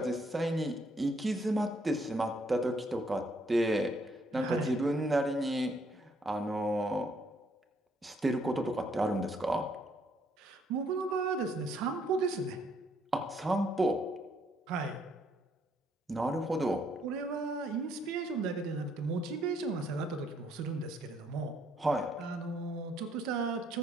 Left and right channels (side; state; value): both; normal; correlation 0.69